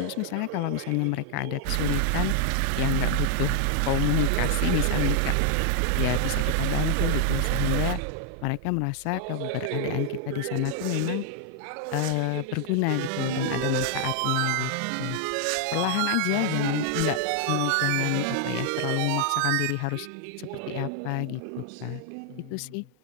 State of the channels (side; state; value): both; different; correlation 0.00